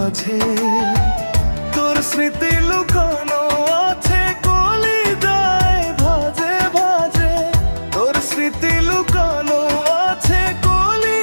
তোর স্মৃতি লুকানো আছে কলিজায় ভাজে ভাজে। তোর স্মৃতি লুকানো আছে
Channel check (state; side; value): inverted; both; correlation -1.00